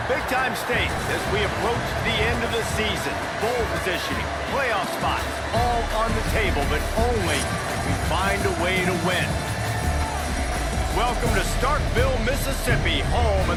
Big-time stakes as we approach the end of the season. Bowl positioning, playoff spots, all on the table, but only if we find a way to win. Welcome to Starkville, Mississippi, home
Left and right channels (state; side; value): identical; both; correlation 1.00